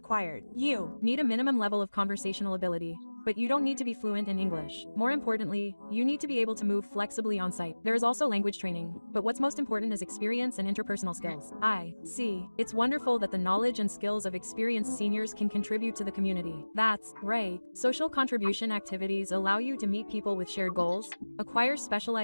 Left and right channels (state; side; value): inverted; both; correlation -1.00